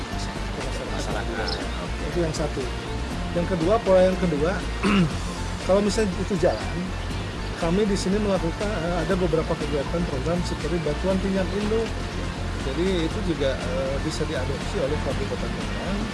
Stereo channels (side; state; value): both; identical; correlation 1.00